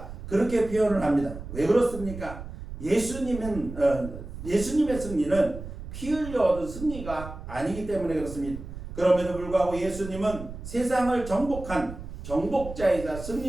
그렇게 표현을 합니다. 왜 그렇습니까? 예수님의 승리는 피 흘려 얻은 승리가 아니기 때문에 그렇습니다. 그럼에도 불구하고 예수님은 세상을 정복한 정복자이자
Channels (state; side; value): noise; right; rumble, 11 dB below the sound